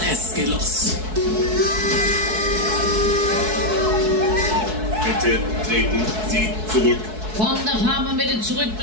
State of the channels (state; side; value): late; left; 4.6 ms